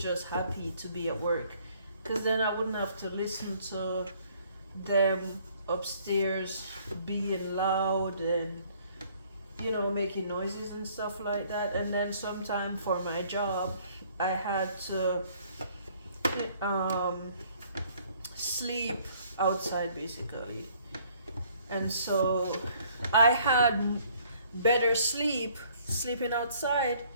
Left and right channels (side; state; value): both; inverted; correlation -0.61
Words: happy to be at work, because then I wouldn't have to listen to them upstairs being loud and making noises and stuff like that. And then sometime for my job, I had to um, sleep outside basically. And so I had better sleeping outside